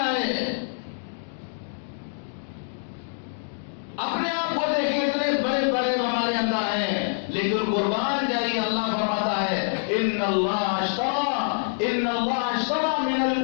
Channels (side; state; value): right; silent; digital silence